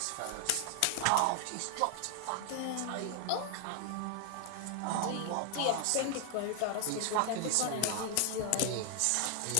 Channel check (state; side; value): different; both; correlation 0.00